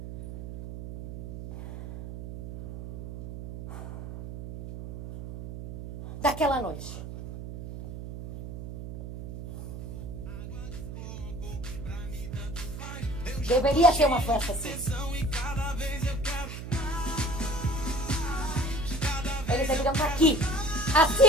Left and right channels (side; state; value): right; noise; hum, 9 dB below the sound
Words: Daquela noite. Deveria ser uma festa assim. Eles deveriam estar aqui.